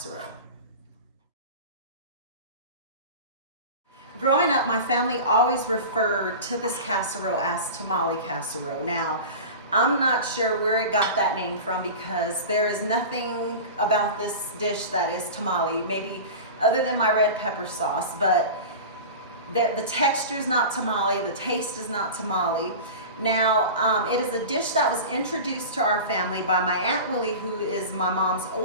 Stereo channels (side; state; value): both; inverted; correlation -0.31